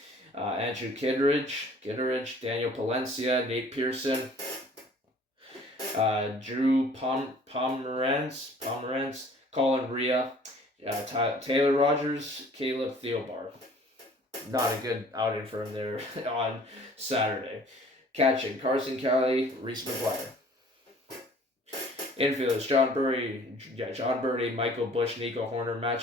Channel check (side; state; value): both; normal; correlation 0.52